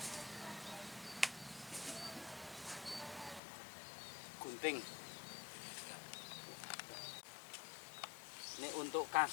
Gunting. Ini untuk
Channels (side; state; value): right; drops out; at 3.4 s